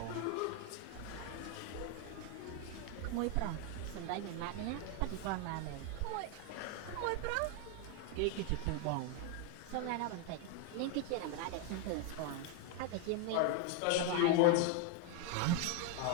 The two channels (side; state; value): both; different; correlation 0.01